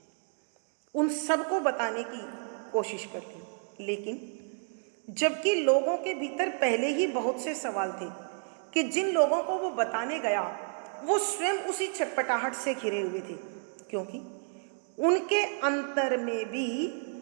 उन सबको बताने की कोशिश कर ली। लेकिन जबकि लोगों के भीतर पहले ही बहुत से सवाल थे कि जिन लोगों को वो बताने गया वो स्वयं उसी छटपटाहट से घिरे हुए थे, क्योंकि उनके अंतर में भी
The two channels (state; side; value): silent; left; 57 dB below the other